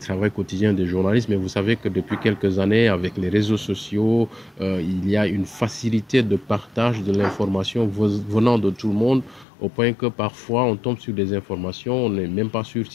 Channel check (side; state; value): right; drops out; at 9.5 s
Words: quotidien des journalistes. Mais vous savez que depuis quelques années, avec les réseaux sociaux, il y a une facilité de partage de l'information venant de tout le monde, au point que parfois on tombe sur des informations, on n'est même pas sûr